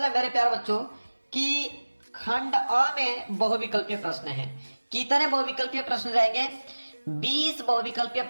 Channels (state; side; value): inverted; both; correlation -1.00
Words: मेरे प्यारे बच्चों कि खंड अ में बहुविकल्पीय प्रश्न है। कितने बहुविकल्पीय प्रश्न रहेंगे? 20 बहुविकल्पीय